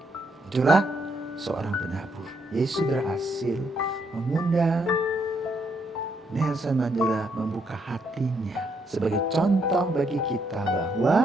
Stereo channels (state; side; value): normal; both; correlation 0.74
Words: Itulah seorang penabur. Yesus berhasil mengundang Nelson Mandela membuka hatinya sebagai contoh bagi kita